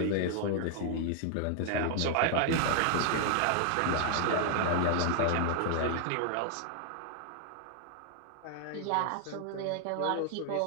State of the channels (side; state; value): both; different; correlation 0.00